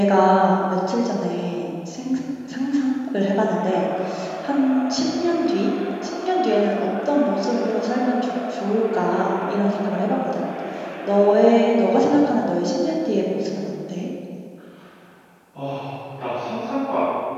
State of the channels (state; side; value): identical; both; correlation 1.00